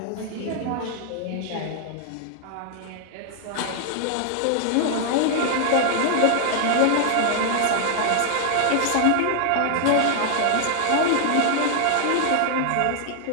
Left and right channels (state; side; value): different; both; correlation -0.01